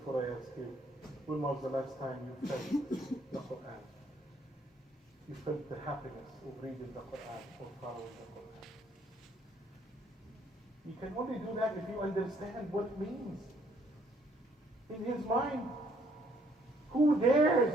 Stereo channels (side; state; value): both; normal; correlation 0.66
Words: I asked you, when was the last time you felt the Quran? You felt the happiness of reading the Quran or following the Quran. You can only do that if you understand what it means. In his mind, who dares